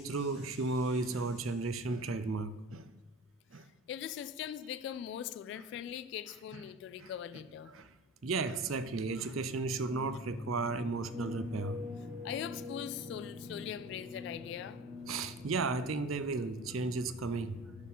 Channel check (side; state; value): both; normal; correlation 0.37